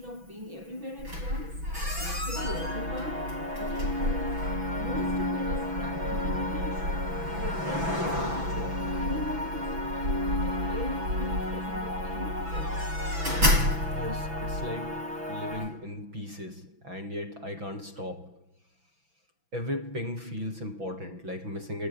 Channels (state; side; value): late; left; 6.0 ms